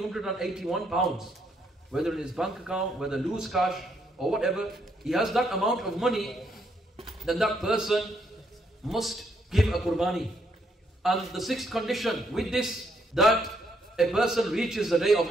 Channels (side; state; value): both; normal; correlation 0.73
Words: pounds, whether in his bank account, whether loose cash or whatever, he has that amount of money, then that person must give a Qurbani. And the sixth condition with this, that a person reaches the day of